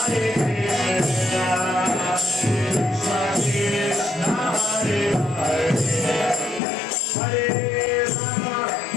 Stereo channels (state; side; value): drops out; right; at 6.6 s